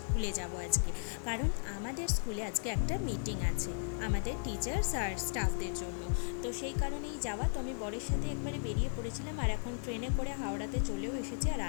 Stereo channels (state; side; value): silent; right; 54 dB below the other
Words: স্কুলে যাব আজকে, কারণ আমাদের স্কুলে আজকে একটা মিটিং আছে আমাদের টিচার্স আর স্টাফদের জন্য। তো সেই কারণেই যাওয়া। তো আমি বরের সাথে একবারে বেরিয়ে পড়েছিলাম আর এখন ট্রেনে করে হাওড়াতে চলেও এসেছি। আর